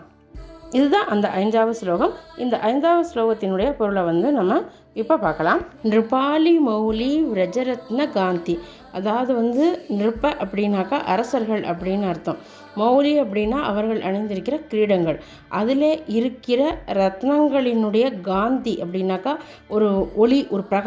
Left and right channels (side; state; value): both; identical; correlation 1.00